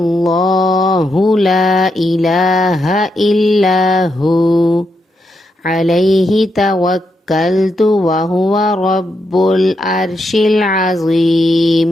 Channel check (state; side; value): normal; both; correlation 0.82